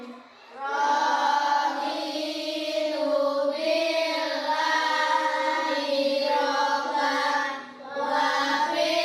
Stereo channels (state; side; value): identical; both; correlation 1.00